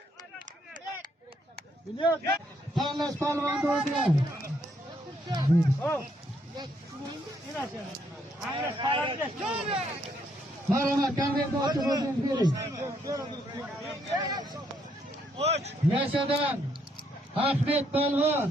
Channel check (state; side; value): normal; both; correlation 0.72